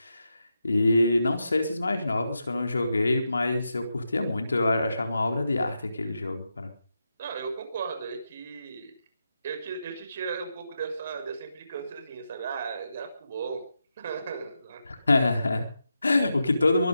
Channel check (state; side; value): inverted; both; correlation -0.87